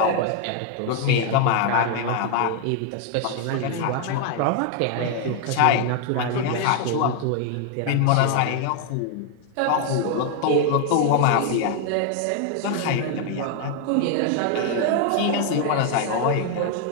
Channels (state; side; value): different; both; correlation 0.00